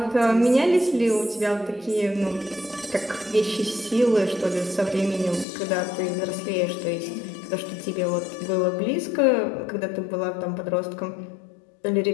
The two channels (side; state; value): right; drops out; at 5.5 s